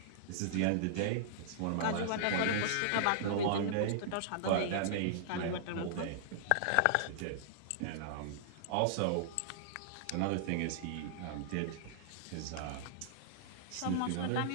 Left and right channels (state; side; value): different; both; correlation -0.02